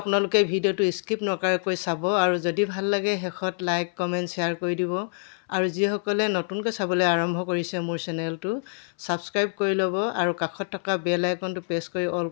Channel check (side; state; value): right; silent; 60 dB below the other